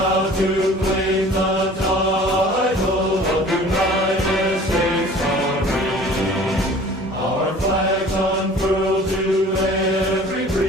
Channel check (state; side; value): normal; both; correlation 0.47